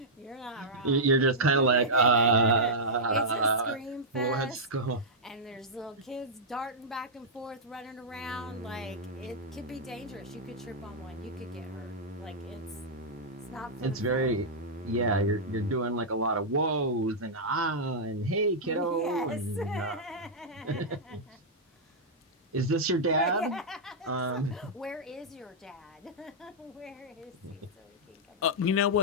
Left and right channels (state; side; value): normal; both; correlation -0.08